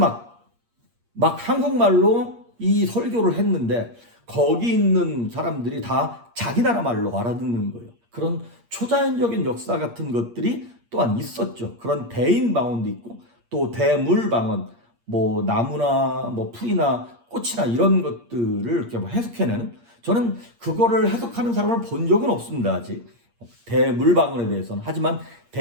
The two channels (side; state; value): left; late; 8.6 ms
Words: 한국말로 이 설교를 했는데 거기 있는 사람들이 다 자기 나라 말로 알아듣는 거예요. 그런 초자연적인 역사 같은 것들이 또한 있었죠. 그런 대인 방언도 있고 또 대물 방언, 뭐 나무나 뭐 풀이나 꽃이나 이런 것들을 이렇게 뭐 해석해내는, 저는 그거를 해석하는 사람을 본 적은 없습니다. 아직 대물 방언에 대해서는. 하지만